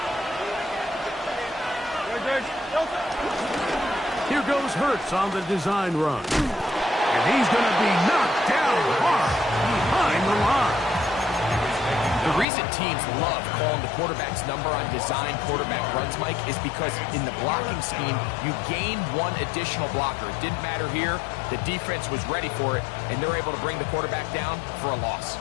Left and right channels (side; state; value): right; drops out; at 12.5 s